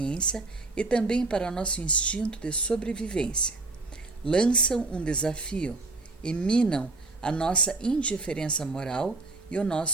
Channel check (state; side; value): quieter; left; 3.3 dB